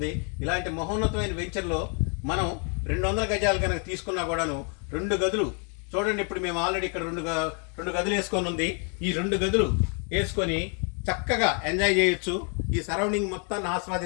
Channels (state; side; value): quieter; right; 38.9 dB